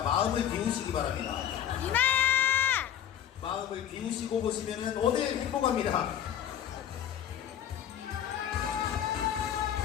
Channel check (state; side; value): quieter; right; 10.1 dB